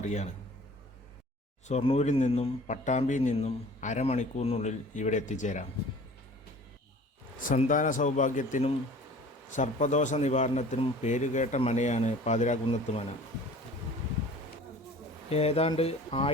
ഷൊർണൂരിൽ നിന്നും പട്ടാമ്പിയിൽ നിന്നും അരമണിക്കൂറിനുള്ളിൽ ഇവിടെ എത്തിച്ചേരാം. സന്താന സൗഭാഗ്യത്തിനും സർപ്പദോഷ നിവാരണത്തിനും പേരുകേട്ട മനയാണ് പാതിരാകുന്നത്ത് മന. ഏതാണ്ട്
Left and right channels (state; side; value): normal; both; correlation 0.46